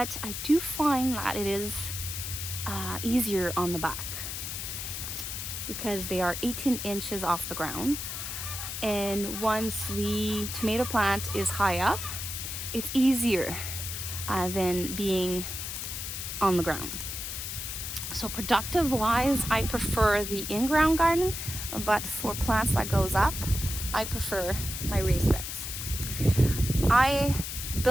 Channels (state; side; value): noise; left; hiss, 5 dB below the sound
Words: I do find that it is easier on the back because they are 18 inches off the ground. And once the tomato plant is high up, it's easier than being on the ground. So productive wise, I prefer the in-ground garden, but for plants that goes up, I prefer my raised beds. I